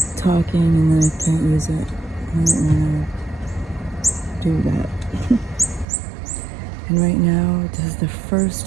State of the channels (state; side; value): drops out; left; at 5.9 s